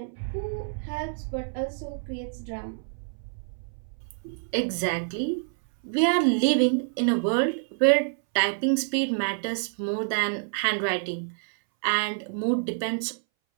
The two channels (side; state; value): left; silent; 60 dB below the other